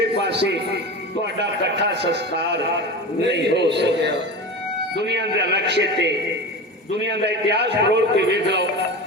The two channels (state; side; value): normal; both; correlation 0.28